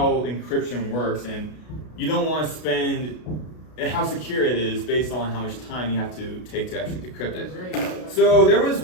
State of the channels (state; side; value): late; right; 33 ms